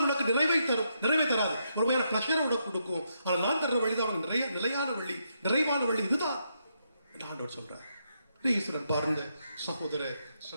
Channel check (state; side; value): inverted; both; correlation -0.79